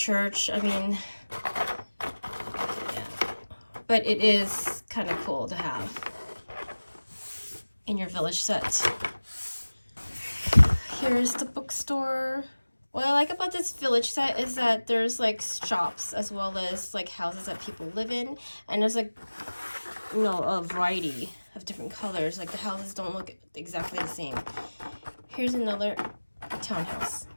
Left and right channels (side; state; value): both; inverted; correlation -1.00